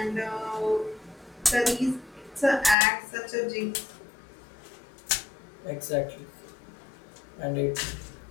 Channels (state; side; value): drops out; right; at 2.8 s